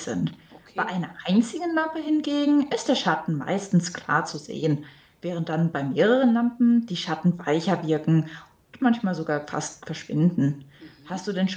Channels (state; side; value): identical; both; correlation 1.00